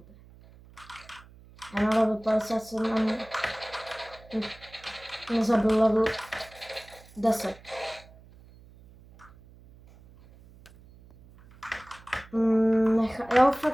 Já na level 57 ani nezabil level 10. Já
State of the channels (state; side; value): noise; right; hum, 23 dB below the sound